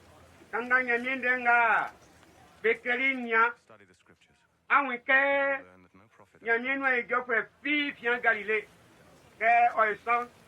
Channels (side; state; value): both; identical; correlation 1.00